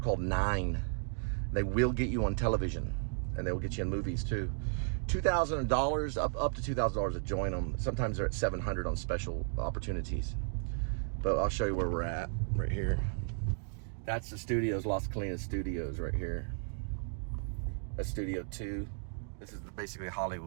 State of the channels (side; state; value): left; silent; 55 dB below the other